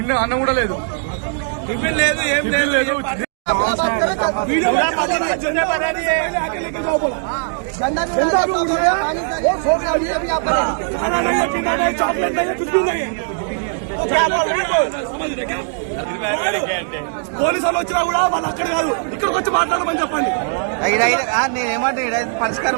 అన్నం కూడా లేదు, టిఫిన్ లేదు, ఏం లేదు. పోలీసు వాళ్ళు వచ్చినా కూడా వాళ్ళు అక్కడ కాదు, ఇక్కడికి వచ్చి మాట్లాడమని చెప్పండి. నేనేమంటే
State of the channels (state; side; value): silent; left; digital silence